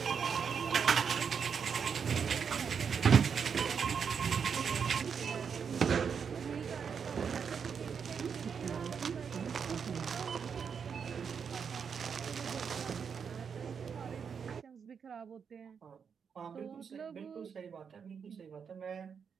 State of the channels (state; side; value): quieter; left; 6.6 dB